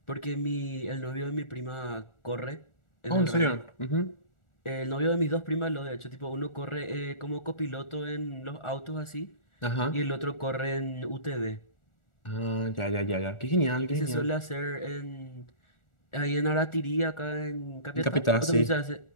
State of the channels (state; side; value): late; right; 1.4 ms